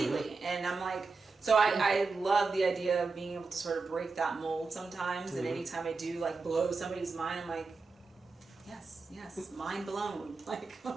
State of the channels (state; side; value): quieter; left; 4.2 dB